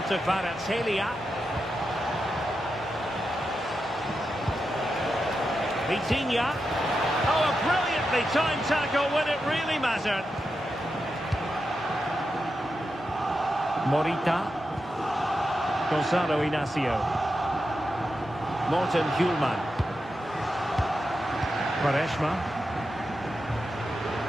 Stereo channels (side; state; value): both; normal; correlation 0.88